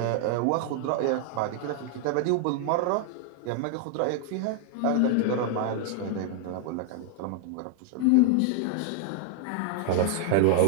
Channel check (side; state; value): both; different; correlation 0.00